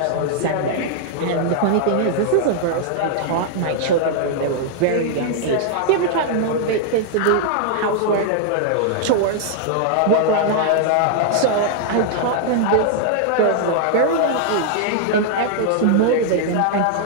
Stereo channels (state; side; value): different; both; correlation -0.01